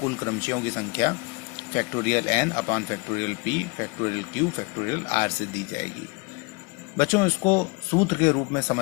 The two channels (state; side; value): quieter; right; 28.7 dB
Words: क्रमचयों की संख्या factorial n upon factorial p factorial q factorial r से दी जाएगी। बच्चों, इसको सूत्र के रूप में